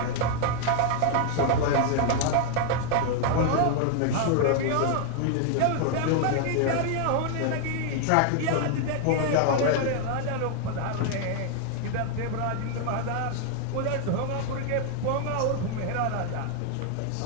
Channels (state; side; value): different; both; correlation 0.00